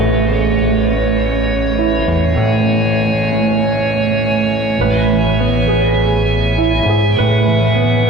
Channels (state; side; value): noise; left; hum, 19 dB below the sound